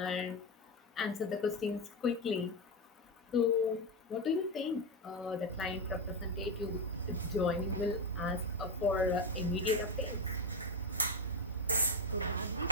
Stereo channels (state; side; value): normal; both; correlation 0.11